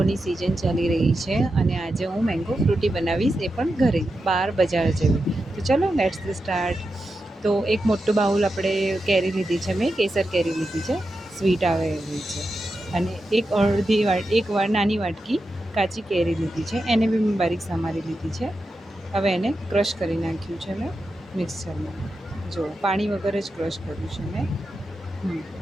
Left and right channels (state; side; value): normal; both; correlation 0.89